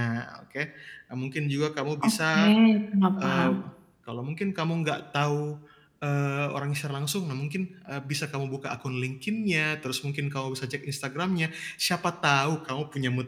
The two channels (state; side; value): identical; both; correlation 1.00